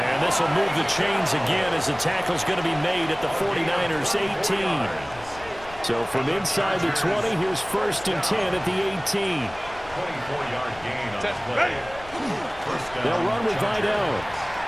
this will move the chains again as the tackle's going to be made at the 49ers' 18. So from inside the 20, here's 1st and 10 at the 18. 24-yard gain on the play. They'll run with Vidal.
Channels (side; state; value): left; noise; rumble, 19 dB below the sound